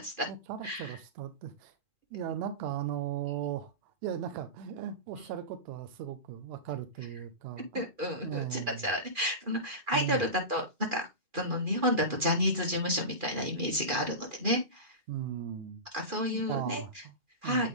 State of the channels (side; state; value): left; late; 2.4 ms